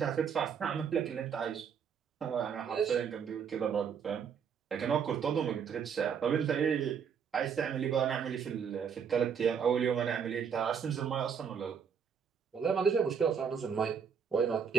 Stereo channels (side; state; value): left; quieter; 7.0 dB